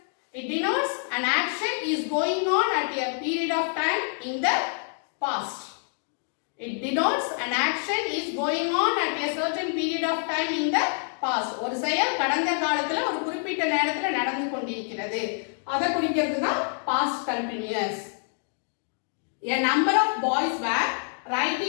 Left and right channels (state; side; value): silent; right; 58 dB below the other